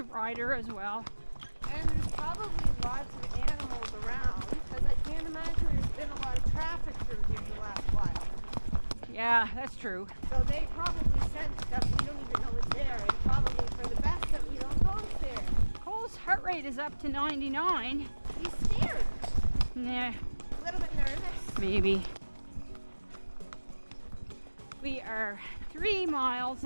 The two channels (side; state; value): both; inverted; correlation -1.00